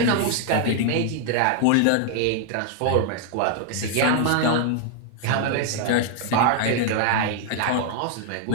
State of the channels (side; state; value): both; different; correlation 0.00